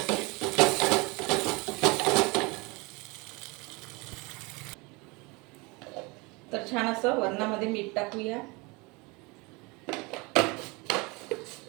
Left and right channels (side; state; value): left; quieter; 26.7 dB